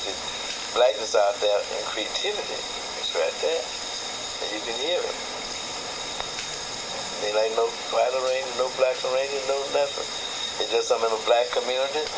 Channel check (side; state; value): both; identical; correlation 1.00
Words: the blackness out there and creativity. It's right there. And you can hear it. Ain't like no white arranger, no black arranger, no nothing. It's just I'm in a black community